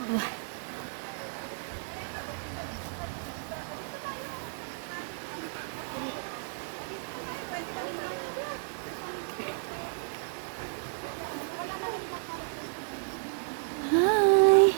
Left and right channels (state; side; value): silent; left; digital silence